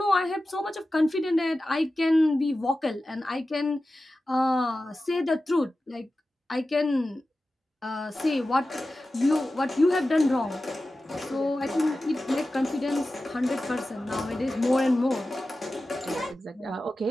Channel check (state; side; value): normal; both; correlation 0.94